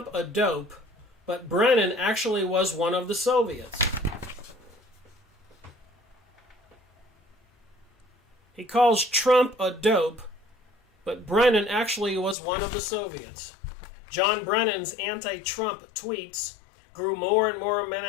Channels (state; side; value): drops out; right; at 12.4 s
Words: a dope, but Brennan actually was one of the Soviets. He calls Trump a dope, but Brennan actually was one of the Soviets. John Brennan's anti-Trump tweets grew more and more